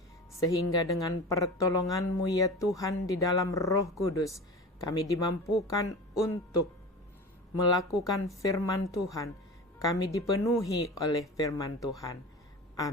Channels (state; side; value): normal; both; correlation 0.32